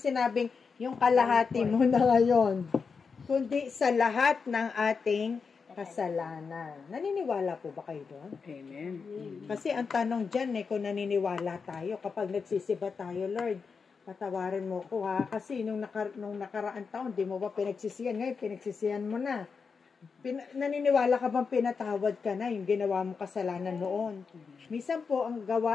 yung kalahati mo na ngayon, kundi sa lahat ng ating kasalanan. Naniniwala po ba kayo doon? Amen. Kasi ang tanong dyan kung naniniwala tayo, kapag nagsisiba tayo, Lord, patawarin mo ko ha, kasi nung nakaraang taon, di mo ba pinagsisihan? Ngayon, pinagsisihan mo na. Naniniwala ka bang pinatawad ka na yung ginawa mong kasalanan noon? Minsan po, ang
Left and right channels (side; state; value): right; quieter; 5.4 dB